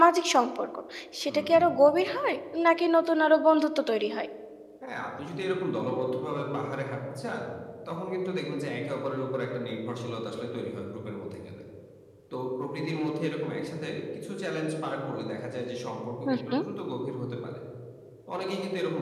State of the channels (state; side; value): identical; both; correlation 1.00